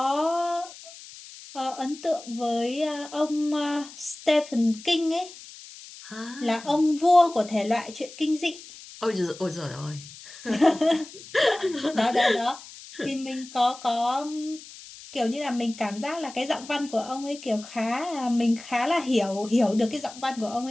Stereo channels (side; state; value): left; noise; hiss, 17 dB below the sound